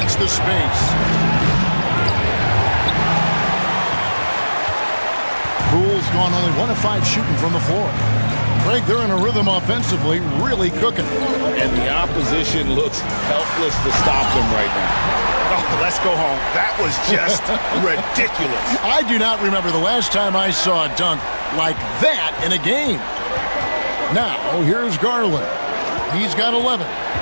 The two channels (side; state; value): both; inverted; correlation -1.00